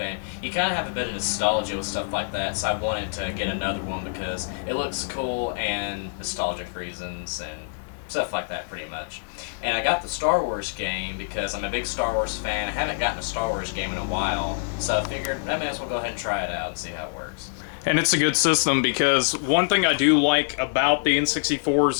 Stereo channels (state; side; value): silent; right; 61 dB below the other